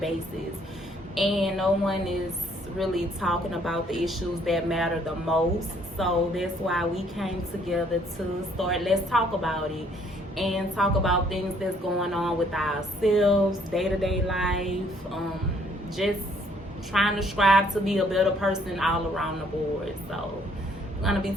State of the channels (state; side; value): normal; both; correlation 0.64